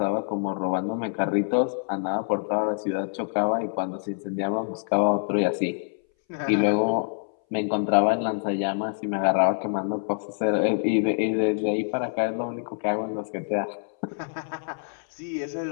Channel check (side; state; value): right; silent; 60 dB below the other